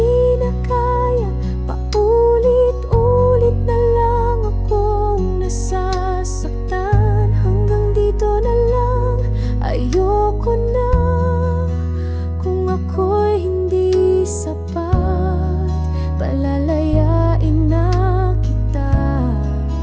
na kaya, paulit-ulit na lang akong nasasaktan. Hanggang dito na lang, ayoko na. Kung ako'y hindi sapat, palalayain na kita,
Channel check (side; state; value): both; identical; correlation 1.00